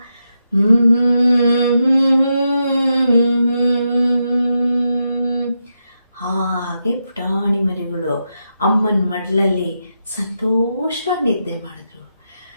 ಹಾಗೆ ಪುಟಾಣಿ ಮರಿಗಳು ಅಮ್ಮನ ಮಡ್ಲಲ್ಲಿ ಸಂತೋಷವಾಗಿ ನಿದ್ದೆ ಮಾಡಿದ್ರು.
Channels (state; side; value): inverted; both; correlation -0.85